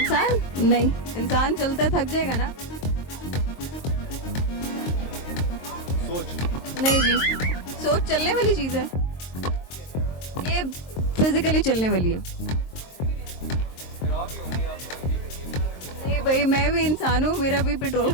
नहीं, इंसान चलते थक जाएगा ना। सोच। नहीं जी, सोच चलने वाली चीज़ है, ये फिजिकली चलने वाली है। नहीं भाई, मैं भी इंसान हूँ, मेरा भी पेट्रोल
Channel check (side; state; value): right; late; 23 ms